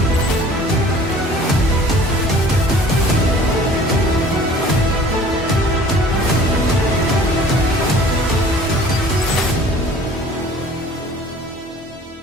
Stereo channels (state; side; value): normal; both; correlation 0.49